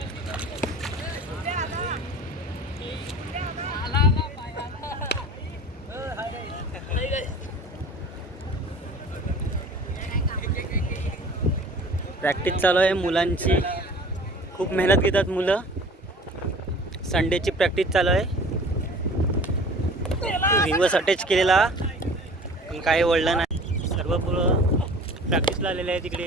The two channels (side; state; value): both; normal; correlation 0.44